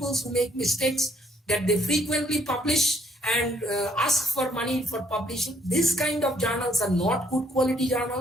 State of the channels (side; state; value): both; normal; correlation 0.67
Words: who make mistakes that they frequently publish and ask for money for publishing. This kind of journals are not good quality